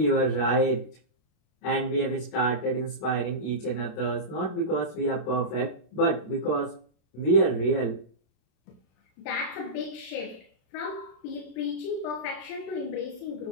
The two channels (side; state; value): right; late; 32 ms